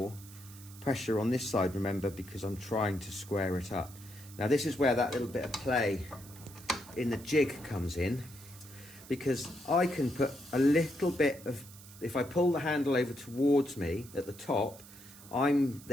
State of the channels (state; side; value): noise; right; hiss, 19 dB below the sound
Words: pressure on this side, remember, because I'm trying to square it up. Now this is where that little bit of play in the jig comes in, because I can put a little bit of, if I pull the handle over towards me at the top, I'm